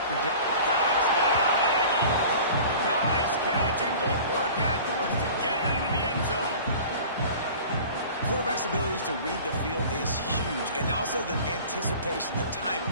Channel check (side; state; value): both; inverted; correlation -0.42